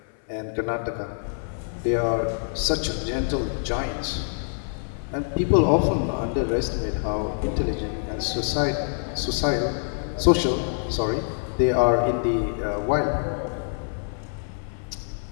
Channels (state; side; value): silent; right; 58 dB below the other